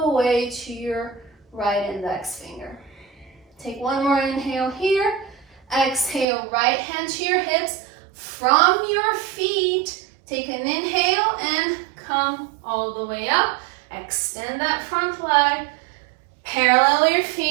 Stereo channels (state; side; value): drops out; left; at 6.2 s